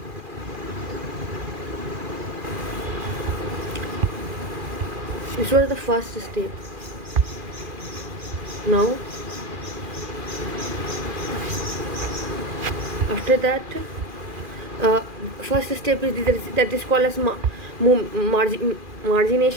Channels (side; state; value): left; late; 2.4 ms